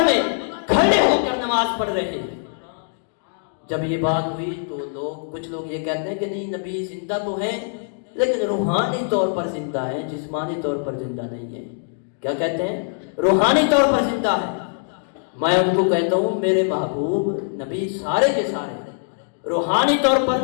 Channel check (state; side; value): silent; right; digital silence